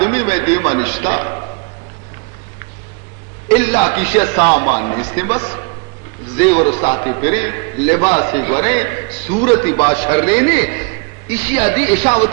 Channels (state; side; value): quieter; left; 32.8 dB